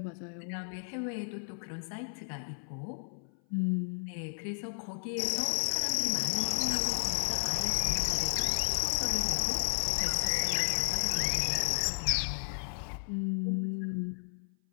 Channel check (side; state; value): right; silent; 56 dB below the other